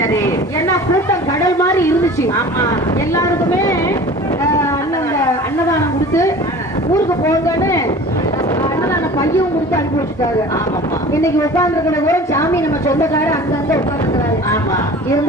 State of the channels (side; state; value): both; normal; correlation 0.41